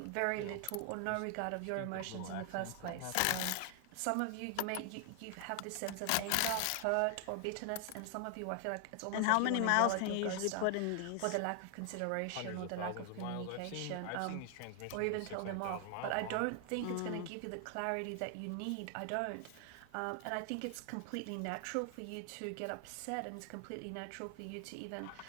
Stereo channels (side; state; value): both; different; correlation 0.00